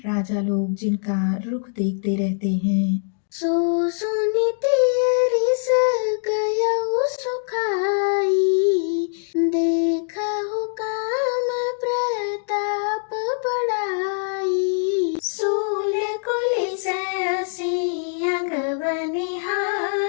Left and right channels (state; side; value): silent; right; digital silence